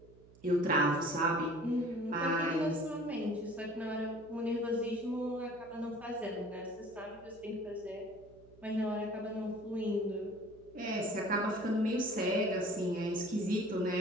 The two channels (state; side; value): noise; right; hum, 24 dB below the sound